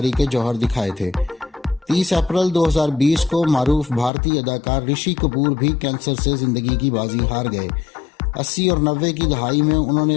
کے جوہر دکھائے تھے۔ 30 اپریل 2020 کو معروف بھارتی اداکار رشی کپور بھی کینسر سے زندگی کی بازی ہار گئے۔ 80 اور 90 کی دہائی میں انہوں نے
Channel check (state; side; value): drops out; right; at 4.1 s